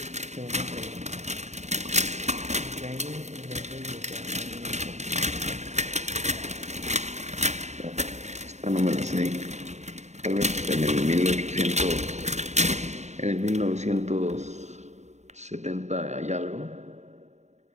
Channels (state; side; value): late; left; 0.33 ms